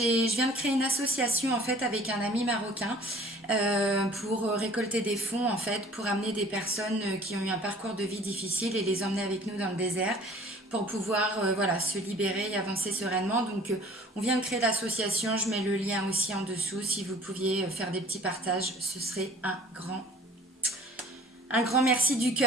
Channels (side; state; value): both; normal; correlation 0.49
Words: viens de créer une association en fait avec un ami marocain pour récolter des fonds en fait pour amener des personnes qui ont eu un parcours de vie difficile et les emmener avec nous dans le désert pour pouvoir voilà, se libérer et avancer sereinement. Donc, on vient de créer l'association, je mets le lien aussi en dessous. Si vous pouviez faire des petits partages, ce serait un grand merci du